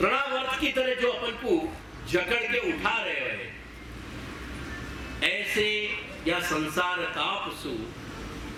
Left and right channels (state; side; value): identical; both; correlation 1.00